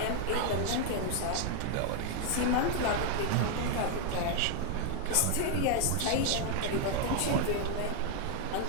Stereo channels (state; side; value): different; both; correlation 0.00